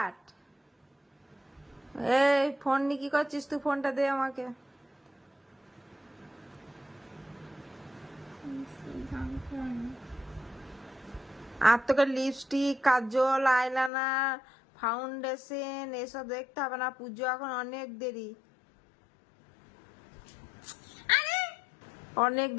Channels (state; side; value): drops out; right; at 13.9 s